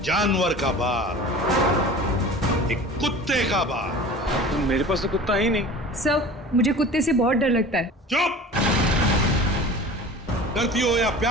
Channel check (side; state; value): both; normal; correlation 0.39